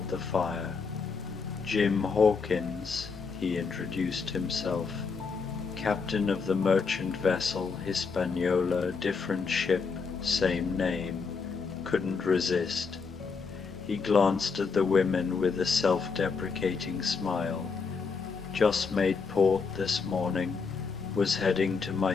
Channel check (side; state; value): right; quieter; 5.1 dB